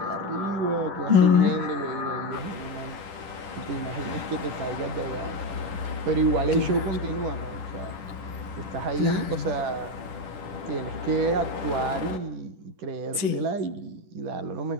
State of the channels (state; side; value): late; left; 10 ms